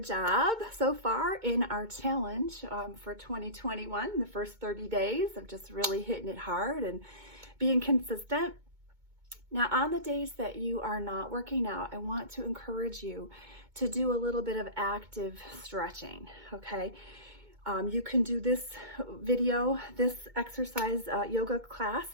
job so far in our challenge for 2021, the first 30 days of just really hitting it hard and being consistent. Now on the days that you are not working out, I want to encourage you to do a little bit of active stretching, okay? You can do this this exercise yoga class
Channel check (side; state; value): left; late; 2.2 ms